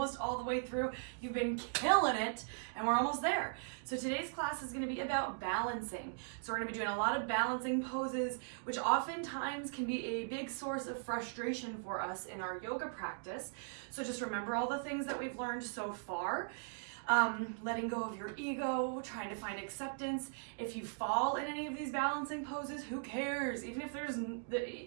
all the way through. You've been killing it and we're almost there. So today's class is going to be about balancing. So we're going to be doing a lot of balancing poses, which oftentimes can be a big source of frustration for us in our yoga practice. So just remember all the things that we've learned so far. Letting go of your ego, trying to find acceptance. If you fall in any of these balancing poses, who cares? Even if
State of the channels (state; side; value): silent; left; digital silence